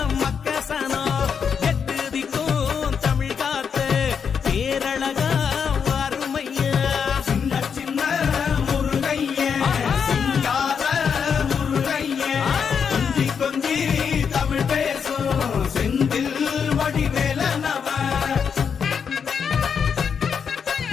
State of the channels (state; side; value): quieter; right; 6.7 dB